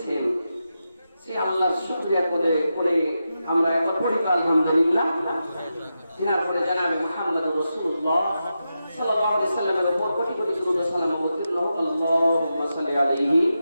সে আল্লাহর শুকরিয়া করে আমরা একবার পড়ি আলহামদুলিল্লাহ। এরপরে জানাবে মুহাম্মদ রাসূলুল্লাহ সাল্লাল্লাহু আলাইহি ওয়াসাল্লামের উপর কোটি কোটি দরুদ ও সালাম অবতীর্ণ হোক। আল্লাহুম্মা সাল্লি আলাইহি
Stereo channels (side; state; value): both; inverted; correlation -0.89